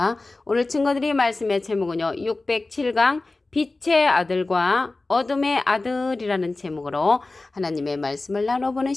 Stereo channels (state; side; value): quieter; right; 3.3 dB